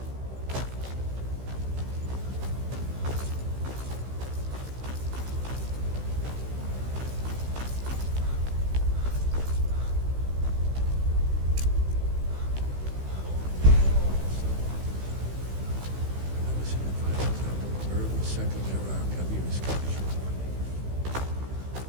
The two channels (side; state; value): left; late; 16 ms